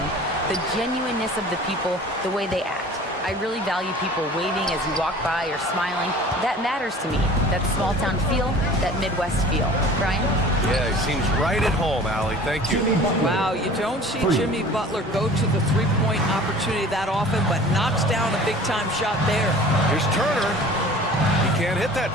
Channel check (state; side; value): normal; both; correlation 0.44